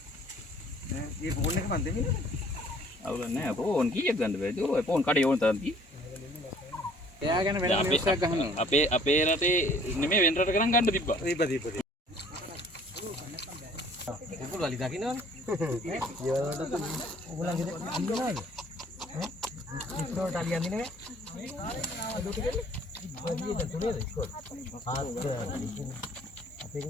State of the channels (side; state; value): both; normal; correlation 0.55